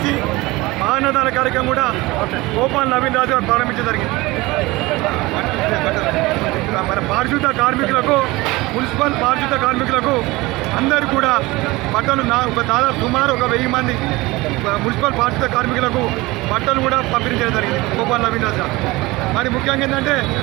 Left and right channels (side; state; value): left; quieter; 21.2 dB